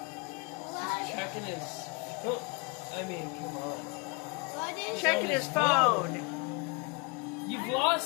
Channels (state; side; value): quieter; right; 30.8 dB